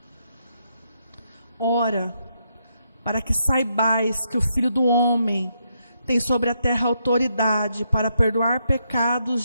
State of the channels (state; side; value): inverted; both; correlation -0.79